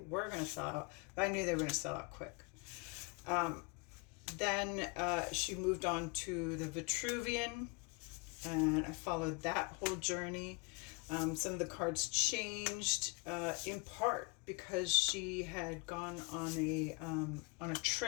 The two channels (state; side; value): quieter; right; 31.2 dB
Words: going to sell out, but I knew they were going to sell out quick. Then she moved on to the Vitruvian, and I followed that whole journey. Some of the cards changed in part because she had gone on a